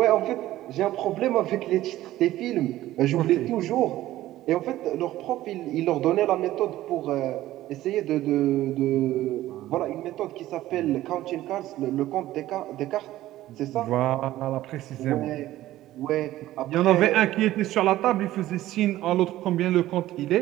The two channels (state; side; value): quieter; left; 14.9 dB